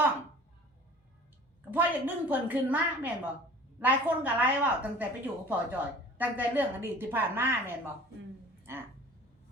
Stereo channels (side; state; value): both; normal; correlation 0.45